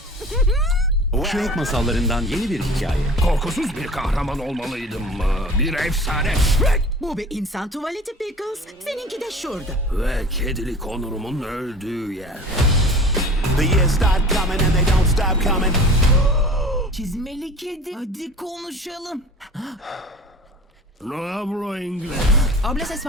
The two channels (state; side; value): normal; both; correlation 0.41